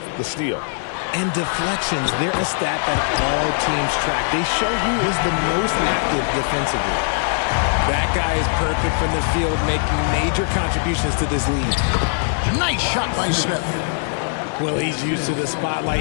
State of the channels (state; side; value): silent; right; digital silence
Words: the steal. And deflections, they're a stat that all teams track. They show who is the most active defensively. That guy is perfect from the field, making major contributions to this lead. Nice shot by Smith. Well, he's used to the